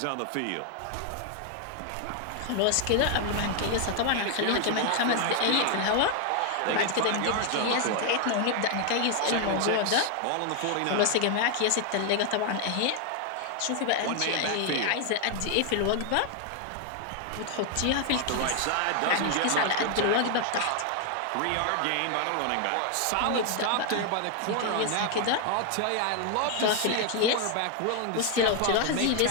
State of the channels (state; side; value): different; both; correlation 0.00